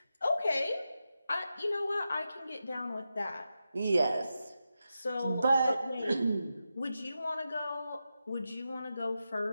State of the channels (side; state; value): both; inverted; correlation -0.90